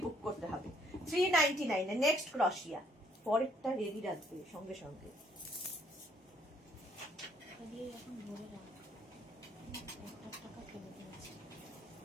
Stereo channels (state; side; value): normal; both; correlation 0.65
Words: বুক করতে হবে। 399 এ নেক্সট ক্রশিয়া, পরেরটা রেডি রাখবে সঙ্গে সঙ্গে।